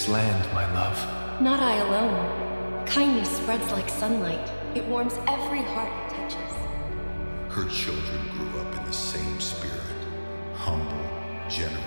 land, my love. Not I alone. Kindness spreads like sunlight. It warms every heart it touches. Her children grew up in the same spirit, humble,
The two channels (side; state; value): both; inverted; correlation -1.00